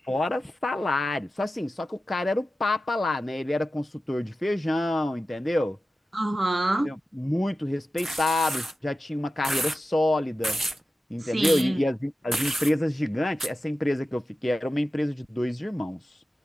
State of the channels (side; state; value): both; normal; correlation 0.94